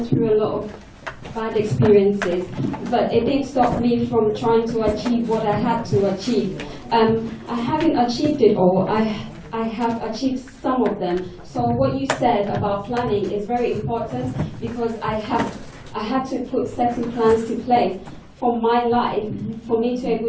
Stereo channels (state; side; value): identical; both; correlation 1.00